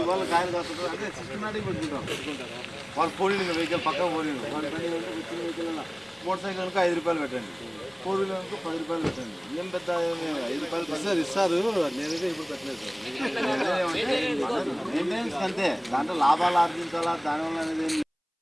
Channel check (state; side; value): identical; both; correlation 1.00